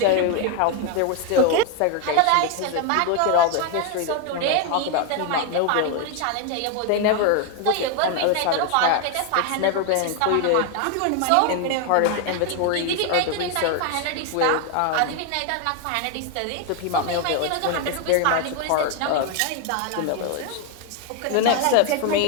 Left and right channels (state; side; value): different; both; correlation 0.01